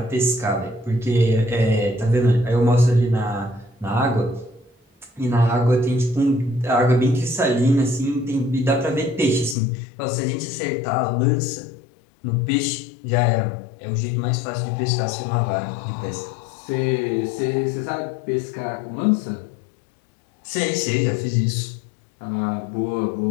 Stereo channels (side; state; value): right; drops out; at 9.6 s